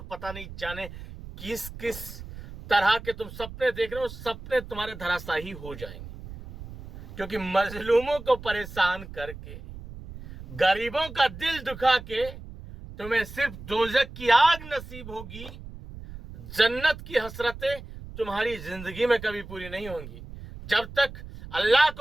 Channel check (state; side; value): noise; right; rumble, 13 dB below the sound